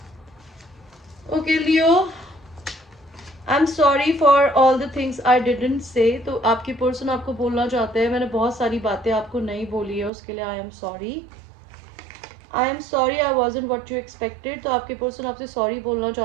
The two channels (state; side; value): drops out; left; at 10.1 s